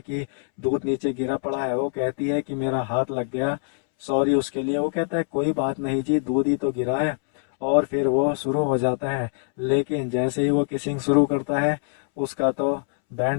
कि दूध नीचे गिरा पड़ा है। वो कहती है कि मेरा हाथ लग गया, सॉरी उसके लिए। वो कहता है कोई बात नहीं जी, दूध ही तो गिरा है। और फिर वो शुरू हो जाता है। लेकिन जैसे ही वो किसिंग शुरू करता है, उसका तो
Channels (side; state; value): right; silent; 63 dB below the other